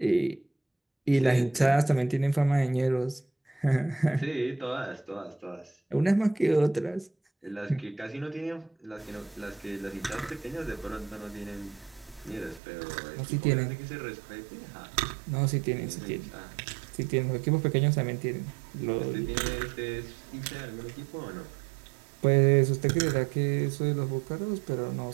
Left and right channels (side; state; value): left; drops out; at 12.6 s